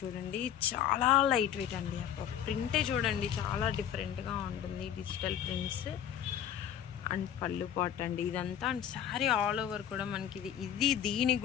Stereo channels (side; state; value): right; quieter; 9.8 dB